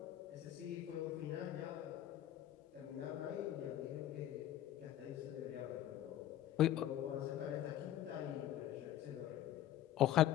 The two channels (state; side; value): quieter; right; 12.7 dB